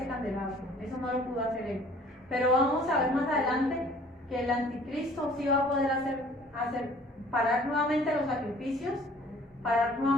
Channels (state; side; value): normal; both; correlation 0.53